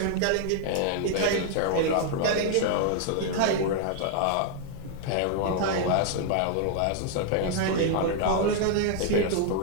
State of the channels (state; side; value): different; both; correlation 0.00